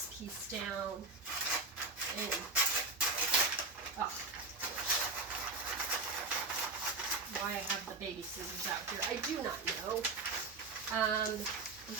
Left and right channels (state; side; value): quieter; left; 3.7 dB